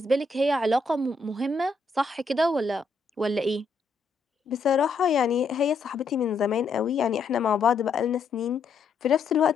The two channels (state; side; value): quieter; right; 4.0 dB